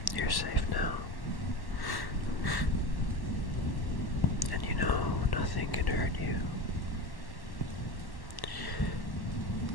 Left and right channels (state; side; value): late; right; 1.1 ms